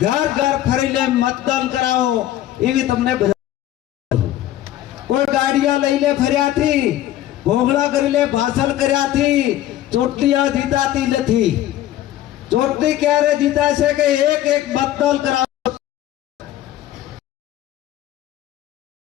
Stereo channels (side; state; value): right; quieter; 13.2 dB